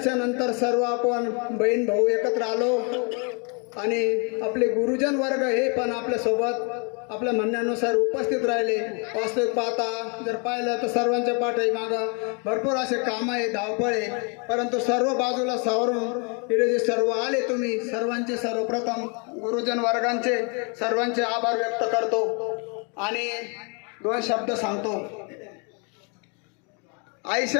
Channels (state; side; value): quieter; right; 35.6 dB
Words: सर्व आपण बहीण भाऊ एकत्र आलो आणि आपले गुरुजन वर्ग हे पण आपल्यासोबत आपल्या म्हणण्यानुसार उपस्थित राहिले. वास्तविक पाहता जर पाहिलं तर सर्वांच्या पाठी मागं भरपूर असे काम आहे, धावपळ आहे, परंतु सर्व बाजूला सावरून इथे जे सर्व आले तुम्ही सर्वांचे सर्वप्रथम गुरुजन वर्गांचे सर्वांचे आभार व्यक्त करतो आणि 2 शब्द सांगतो.